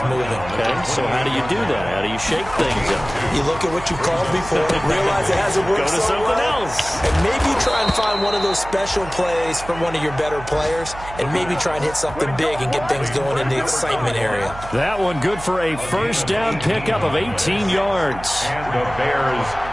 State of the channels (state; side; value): noise; right; hum, 13 dB below the sound